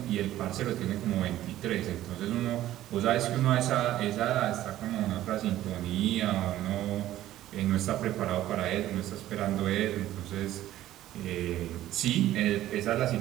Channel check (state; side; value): quieter; left; 13.9 dB